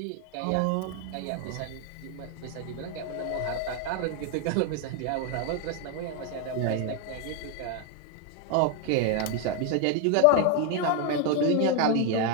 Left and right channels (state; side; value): different; both; correlation 0.01